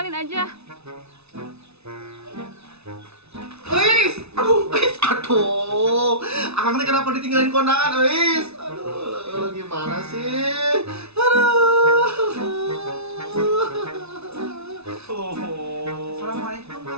aja. Aduh, Akang teh kenapa ditinggalin kondangan, Eis? Aduh, gimana sih? Assalamualaikum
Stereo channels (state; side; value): late; left; 0.80 ms